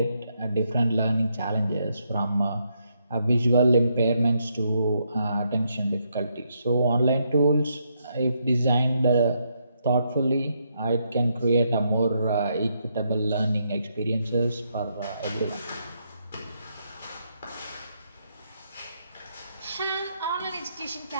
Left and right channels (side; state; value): both; inverted; correlation -0.78